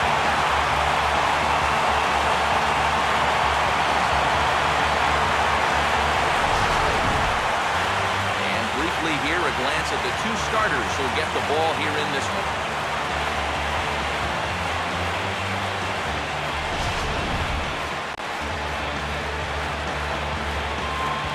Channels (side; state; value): both; identical; correlation 1.00